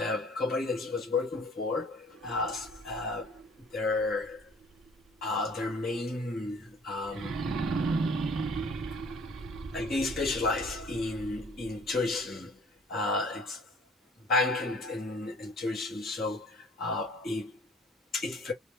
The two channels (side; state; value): both; normal; correlation 0.52